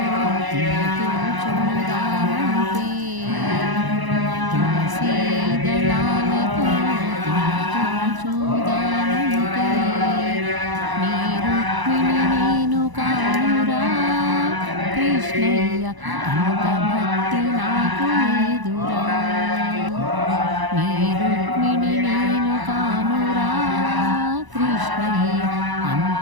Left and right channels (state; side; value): late; left; 1.0 ms